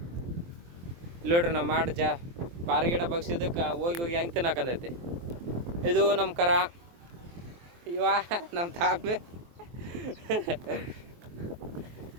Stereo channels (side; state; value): left; late; 23 ms